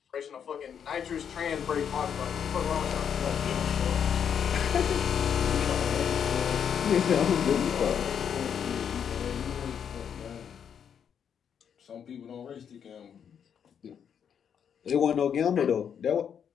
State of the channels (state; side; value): quieter; right; 8.0 dB